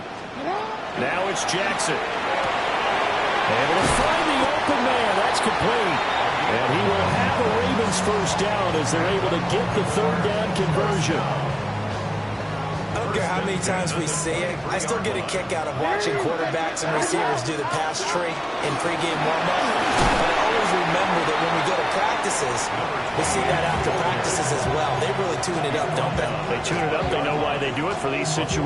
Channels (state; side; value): identical; both; correlation 1.00